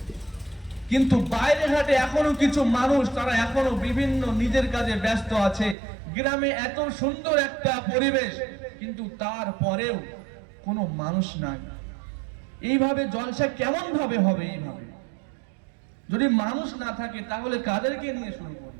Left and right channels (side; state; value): left; drops out; at 5.8 s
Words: কিন্তু বাইরে ঘাটে এখনো কিছু মানুষ, তারা এখনো বিভিন্ন নিজের কাজে ব্যস্ত আছে। গ্রামে এত সুন্দর একটা পরিবেশ, কিন্তু তারপরেও কোনো মানুষ নাই। এইভাবে জলসা কেমন ভাবে হবে? এইভাবে যদি মানুষ না থাকে তাহলে কাদেরকে নিয়ে শুরু